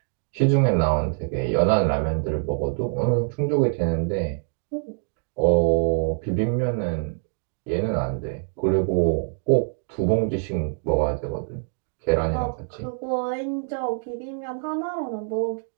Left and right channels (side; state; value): left; silent; digital silence